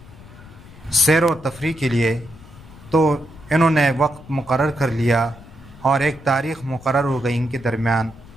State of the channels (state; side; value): noise; left; rumble, 20 dB below the sound